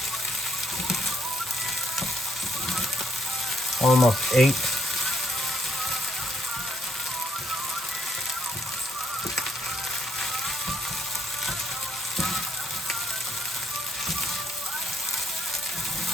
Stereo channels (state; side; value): normal; both; correlation 0.71